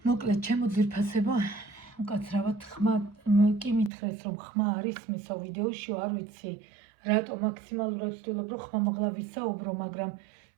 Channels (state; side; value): drops out; left; at 3.9 s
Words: მოკლედ, ჩემო ძვირფასებო, უკაცრავად ხმა კი მითხრეს რომ ხმა არის მისო ვიდეოშიო, არ ვიცი, რატო მაქსიმალურად ვცდილობ რომ ხმამაღლა ვისაუბრო, მაგრამ